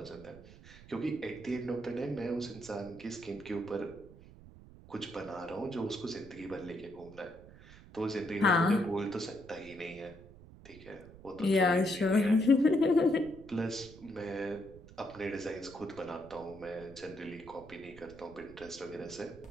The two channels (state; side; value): noise; right; rumble, 19 dB below the sound